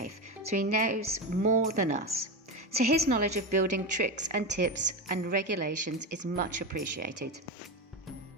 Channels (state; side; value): normal; both; correlation 0.17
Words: so he knows more than us. So his knowledge of building tricks and tips and regulations is much appreciated.